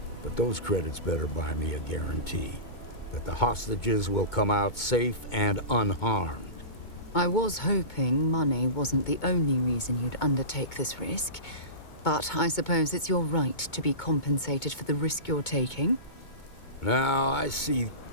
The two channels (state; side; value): late; right; 2.2 ms